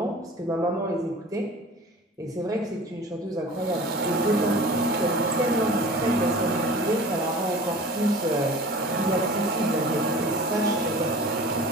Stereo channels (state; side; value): normal; both; correlation 0.40